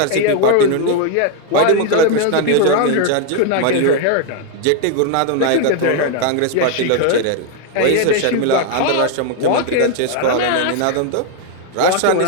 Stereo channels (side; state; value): both; different; correlation 0.00